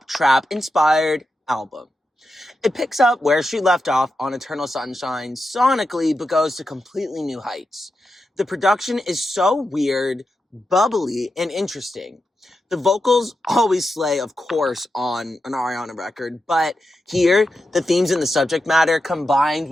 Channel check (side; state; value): both; normal; correlation 0.88